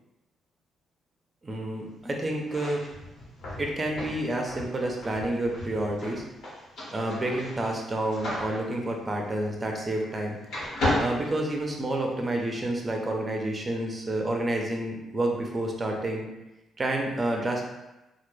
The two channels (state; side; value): normal; both; correlation 0.81